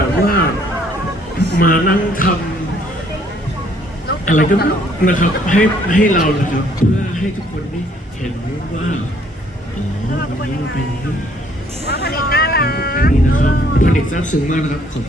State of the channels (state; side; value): normal; both; correlation 0.63